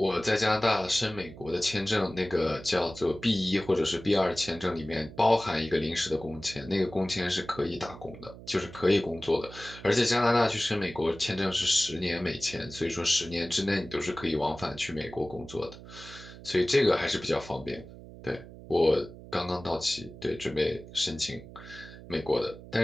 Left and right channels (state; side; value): noise; right; hum, 16 dB below the sound